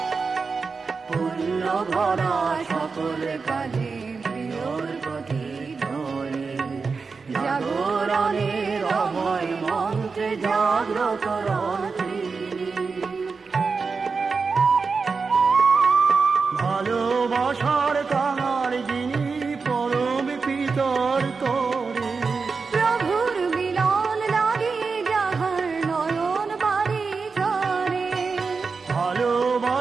পুণ্য ভরা সকল কাজে প্রিয়র প্রতি ধরে, জাগরণের অভয় মন্ত্রে জাগ্রত রন্ত্রী। ভালোবাসার কাঙাল যিনি পরম পিতর করে, প্রভুর মিলন লাগে যাহার নয়ন বাড়ি ঝরে।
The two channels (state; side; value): quieter; left; 4.7 dB